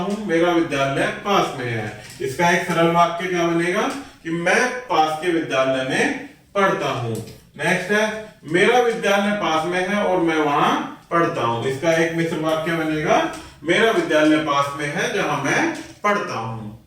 मेरा विद्यालय पास में है, इसका एक सरल वाक्य क्या बनेगा कि मैं पास के विद्यालय में पढ़ता हूं। नेक्स्ट है मेरा विद्यालय पास में है और मैं वहां पढ़ता हूं। इसका एक मिश्र वाक्य बनेगा, मेरा विद्यालय पास में है जहां मैं पढ़ता हूं।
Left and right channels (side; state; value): both; identical; correlation 1.00